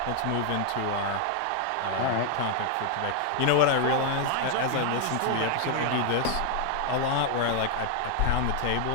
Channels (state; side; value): different; both; correlation 0.00